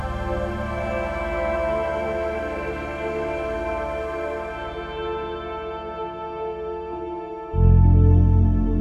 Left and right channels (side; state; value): both; identical; correlation 1.00